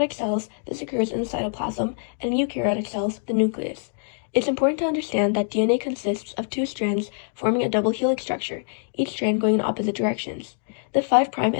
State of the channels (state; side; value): silent; right; digital silence